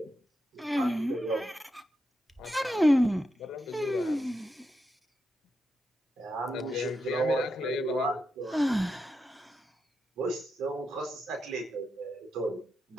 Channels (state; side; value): normal; both; correlation 0.86